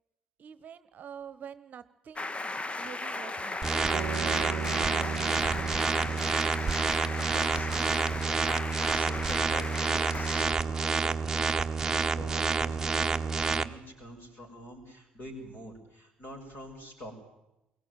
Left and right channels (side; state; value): left; quieter; 3.4 dB